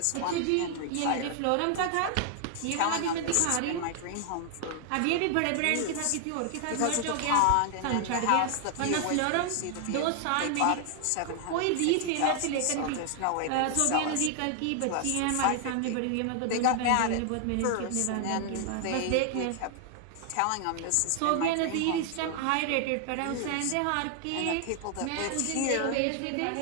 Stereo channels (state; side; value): different; both; correlation 0.00